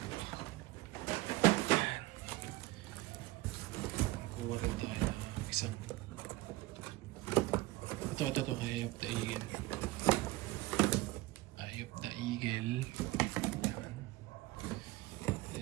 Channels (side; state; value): left; quieter; 19.0 dB